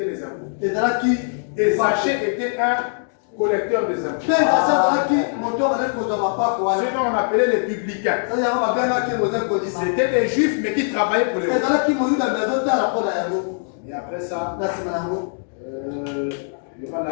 les impôts. Et Zachée était un collecteur des impôts. Ce dont on appelait les publicains. C'était des juifs, mais qui travaillaient pour les juifs. Et après ça, il y aura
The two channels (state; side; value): silent; right; digital silence